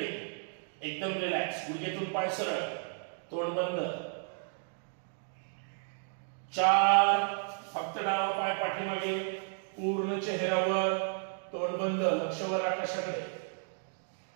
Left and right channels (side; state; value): left; silent; 56 dB below the other